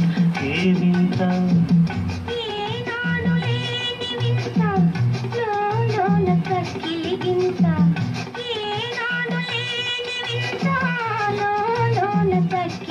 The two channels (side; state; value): both; identical; correlation 1.00